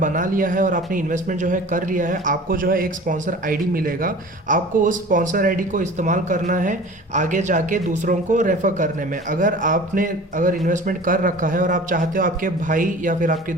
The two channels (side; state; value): both; normal; correlation 0.41